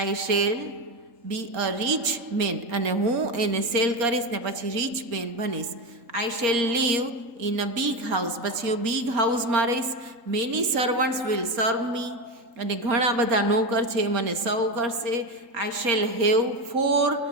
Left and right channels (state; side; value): late; left; 3.8 ms